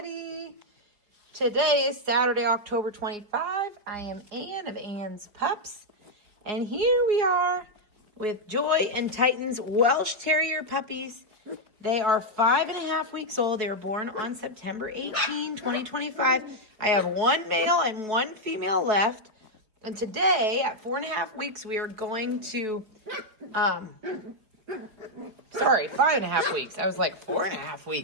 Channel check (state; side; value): late; left; 4.8 ms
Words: Today is Saturday, October 25. I am Ann of Ann's Pups. And here we are with Joy and Titan's Welsh Terrier puppies. They are 5.5 weeks old. They were born on September 18, 2025. I have one male and one female left. And today, at 4.5 weeks, we are going to... Sorry, 5.5 weeks. I was like 4.5